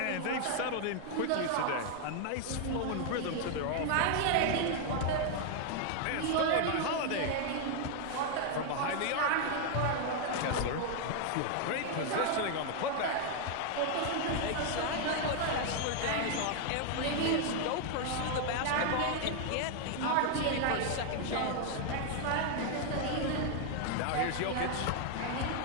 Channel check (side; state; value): both; different; correlation 0.00